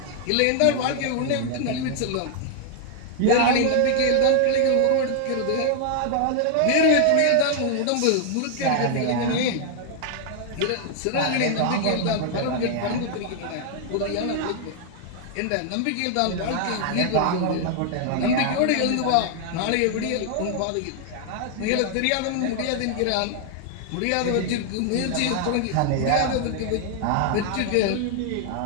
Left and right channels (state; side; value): different; both; correlation 0.00